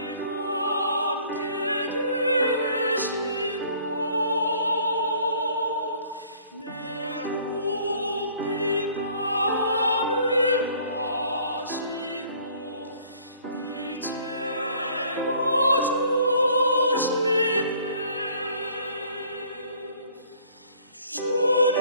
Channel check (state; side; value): inverted; both; correlation -0.57